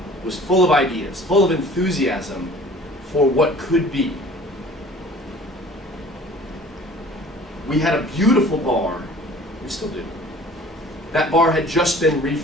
was full of ideas, full of enthusiasm for what could be. We had a beautiful bar, we still do. That bar had just been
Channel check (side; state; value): both; normal; correlation 0.48